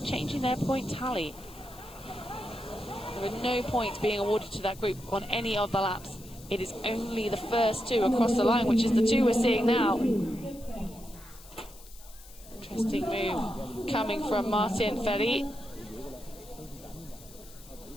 their point tally. There are no points being awarded to that group on any of the laps. It is only the first two across the line, which is the two we're seeing now. Interesting move coming from Martin FERRIE.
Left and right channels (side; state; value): left; noise; hiss, 20 dB below the sound